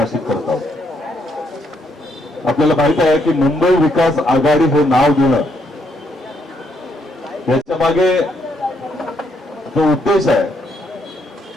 करत आहोत. आपल्याला माहित आहे की मुंबई विकास आघाडी हे नाव देणं याच्या मागे जो उद्देश आहे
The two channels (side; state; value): both; normal; correlation 0.74